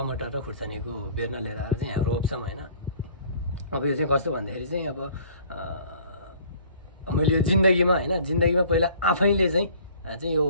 र खुर्सानीको बेर्ना लिएर आएर चाहिँ यहाँ रोप्छौँ होइन। अब यो चाहिँ कस्तो भन्दाखेरि चाहिँ अब मैले यो जिन्दगीमा पहिला आफैले चाहिँ यो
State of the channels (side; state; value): both; inverted; correlation -0.52